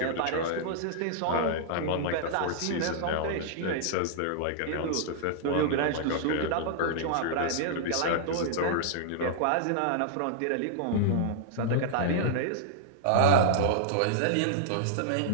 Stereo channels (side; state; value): both; different; correlation -0.01